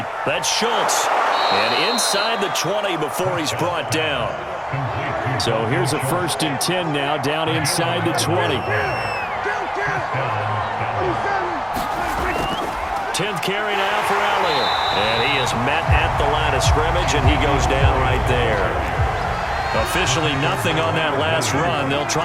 That's Schultz. And inside the 20 before he's brought down. So here's a 1st and 10 now, down inside the 20. 10th carry now for Elliott. And he is met at the line of scrimmage, and he goes down right there. Officially nothing on that last run. They'll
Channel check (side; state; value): both; identical; correlation 1.00